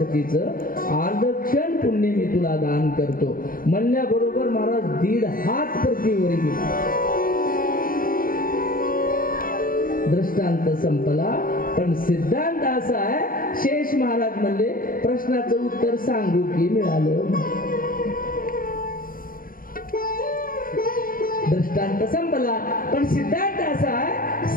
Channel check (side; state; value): right; late; 0.41 ms